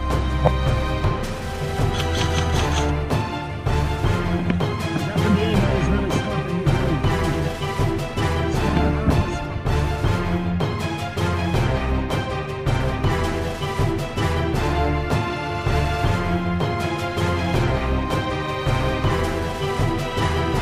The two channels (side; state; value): both; identical; correlation 1.00